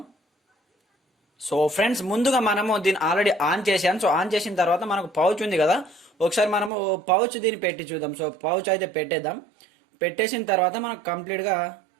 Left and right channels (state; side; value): drops out; left; at 6.7 s